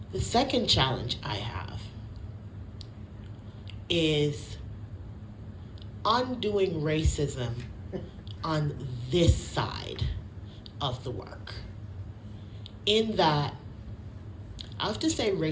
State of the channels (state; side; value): identical; both; correlation 1.00